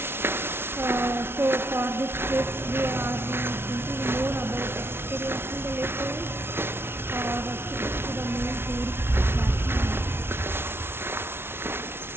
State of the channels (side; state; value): left; late; 0.12 ms